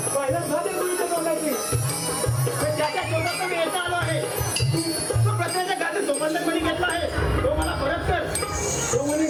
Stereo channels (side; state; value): both; identical; correlation 1.00